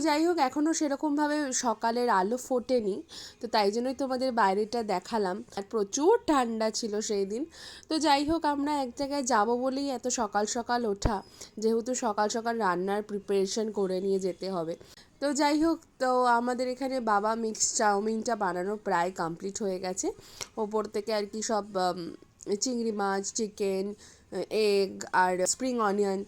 যাই হোক, এখনও সেরকমভাবে সকালের আলো ফোটেনি, তো তাই জন্যই তোমাদের বাইরেটা দেখালাম। আর প্রচুর ঠান্ডা ছিল সেই দিন। তো যাই হোক, আমরা এক জায়গায় যাব বলেই এত সকাল সকাল ওঠা, যেহেতু সকাল সকাল রান্নার প্রিপারেশন করে নিয়ে যেতে হবে। তো যাই হোক, তো আমাদের এখানে বাবা মিক্স চাউমিনটা বানানো প্রায় কমপ্লিট হয়ে গেছে। ওপর থেকে আর কি সব চিংড়ি মাছ, চিকেন, এগ আর স্প্রিং অনিয়ন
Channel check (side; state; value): both; identical; correlation 1.00